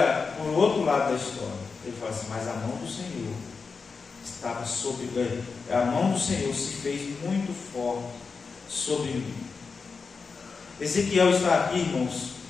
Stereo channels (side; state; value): right; quieter; 4.9 dB